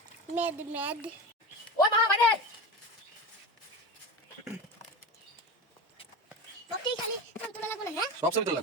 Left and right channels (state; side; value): normal; both; correlation 0.25